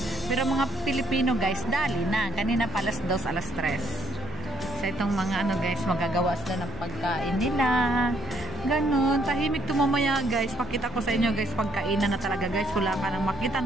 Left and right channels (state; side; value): normal; both; correlation 0.68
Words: Pero mga Pilipino guys, dali na. Kanina pa alas 2, alas 3. So, itong mga ano guys, magagawa sila ng pagkain nila. Ganon. Tahimik tumamaya guys. Pakita ko sa inyo guys, pagkainan na talaga guys. Wala ka nang